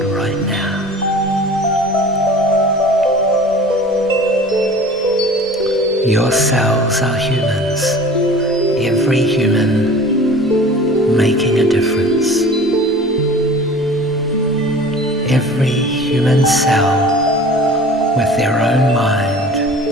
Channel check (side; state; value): both; normal; correlation 0.42